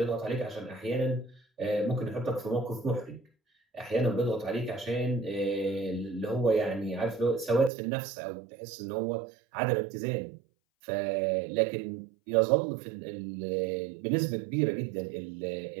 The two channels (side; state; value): left; drops out; at 7.7 s